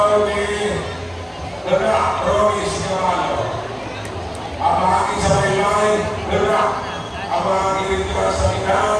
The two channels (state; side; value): identical; both; correlation 1.00